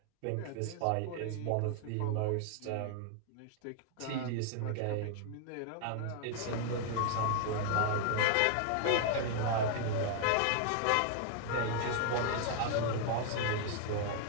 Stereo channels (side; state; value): both; different; correlation 0.00